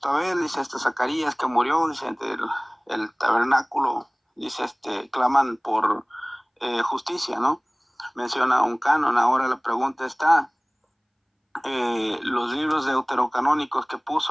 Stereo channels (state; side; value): identical; both; correlation 1.00